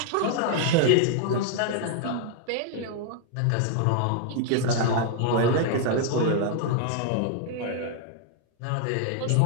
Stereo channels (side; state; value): both; different; correlation 0.00